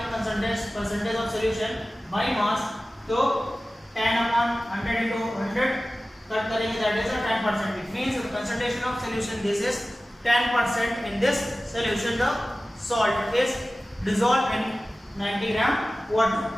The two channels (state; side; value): normal; both; correlation 0.96